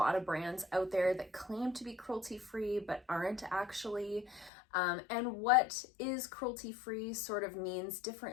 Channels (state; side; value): drops out; right; at 4.5 s